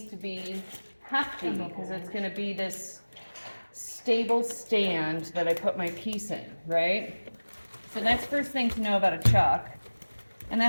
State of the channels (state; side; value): inverted; both; correlation -1.00